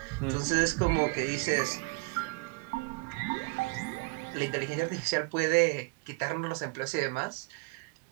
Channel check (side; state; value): left; quieter; 31.5 dB